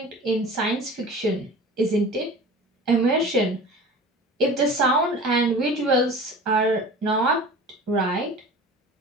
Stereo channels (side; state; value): both; normal; correlation 0.39